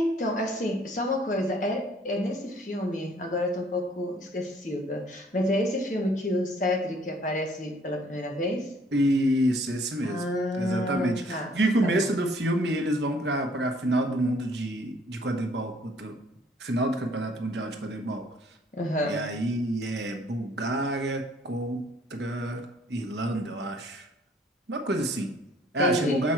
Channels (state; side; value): normal; both; correlation 0.60